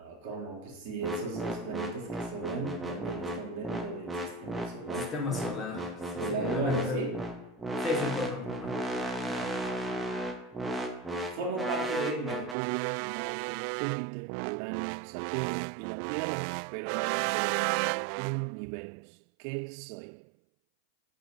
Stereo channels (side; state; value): left; drops out; at 12.6 s